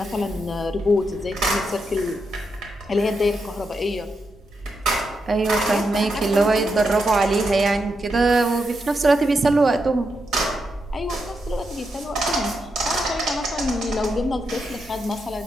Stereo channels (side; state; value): both; normal; correlation 0.84